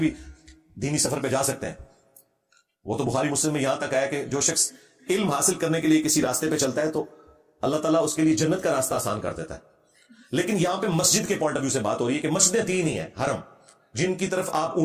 دینی سفر پہ جا سکتے ہیں. وہ تو بخاری مسلم میں یہاں تک آیا کہ جو شخص علم حاصل کرنے کے لیے کسی راستے پہ چلتا ہے تو اللہ تعالیٰ اس کے لیے جنت کا راستہ آسان کر دیتا ہے. لیکن یہاں پہ مسجد کے پوائنٹ آف ویو سے بات ہو رہی ہے کہ مسجدیں 3 ہی ہیں حرم، جن کی طرف آپ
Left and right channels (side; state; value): both; identical; correlation 1.00